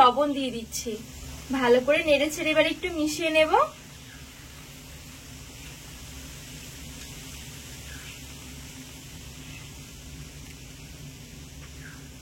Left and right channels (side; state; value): both; identical; correlation 1.00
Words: দিয়ে দিচ্ছি। ভালো করে নেড়ে ছেড়ে এবার একটু মিশিয়ে নেব।